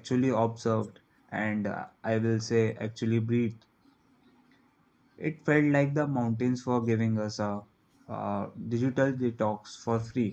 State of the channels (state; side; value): identical; both; correlation 1.00